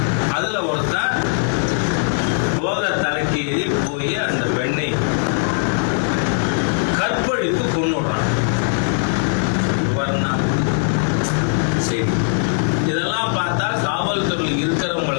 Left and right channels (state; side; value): silent; right; 62 dB below the other